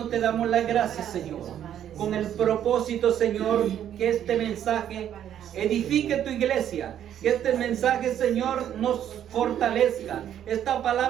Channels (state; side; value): quieter; left; 10.3 dB